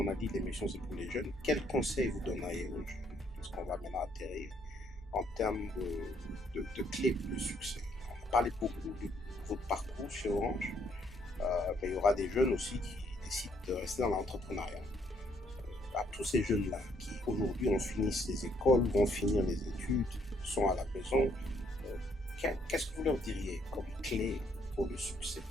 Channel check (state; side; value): normal; both; correlation 0.69